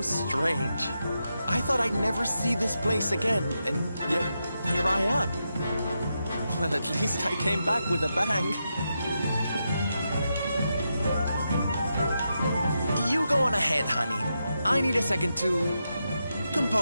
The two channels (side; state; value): both; inverted; correlation -0.86